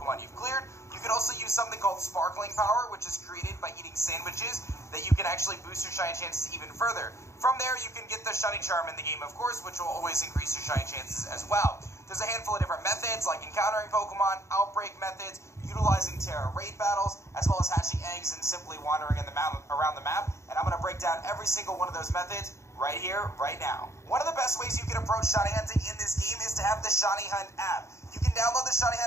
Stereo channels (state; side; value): late; right; 0.14 ms